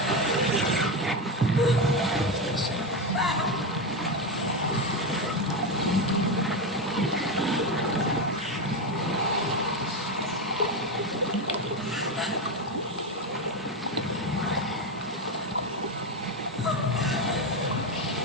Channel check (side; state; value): both; normal; correlation 0.13